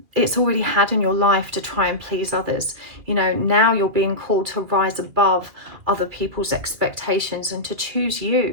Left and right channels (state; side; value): late; left; 2.4 ms